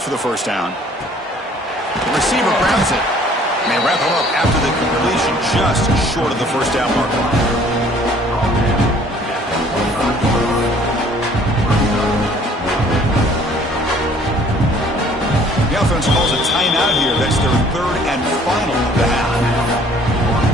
the first down. The receiver grabs it. And they wrap him up after the completion, just short of the first down mark. The offense calls a timeout here. That's their third and final of the half.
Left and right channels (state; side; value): normal; both; correlation 0.56